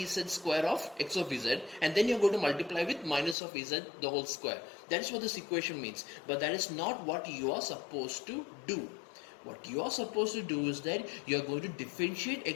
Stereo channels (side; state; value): right; drops out; at 3.4 s